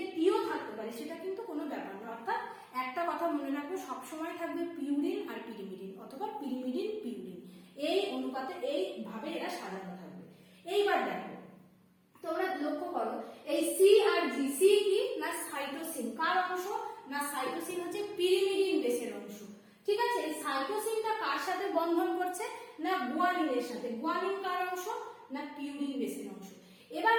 টিও থাকতে পারে, সেটা কিন্তু কোনো ব্যাপার না। অর্থাৎ একটা কথা মনে রাখবে সবসময় থাকবে পিউরিন আর পিরিমিডিন অথবা পিরিমিডিন পিউরিন, এই অনুপাতে এইভাবে এরা সাজানো থাকবে। এইবার দেখো তোমরা লক্ষ্য করো এই সি আর জি, সি কি না সাইটোসিন কার অংশ না সাইটোসিন হচ্ছে পিরিমিডিন বেসের অংশ। ঠিক আছে, এই সাইটোসিনটা কার সাথে বন্ধন করছে না গুয়ানিনের সাথে। গুয়ানিন কার অংশ না পিউরিন বেসের অংশ। এবার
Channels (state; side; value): identical; both; correlation 1.00